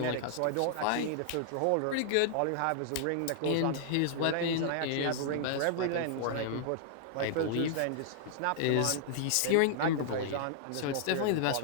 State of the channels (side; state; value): both; different; correlation -0.01